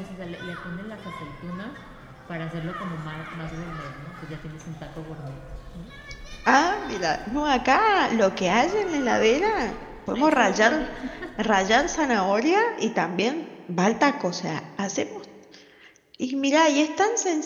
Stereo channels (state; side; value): identical; both; correlation 1.00